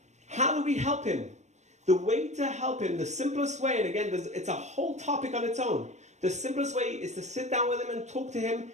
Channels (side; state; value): left; late; 0.34 ms